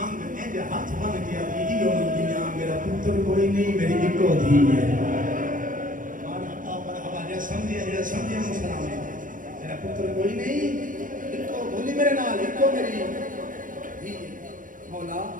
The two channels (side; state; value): left; late; 0.39 ms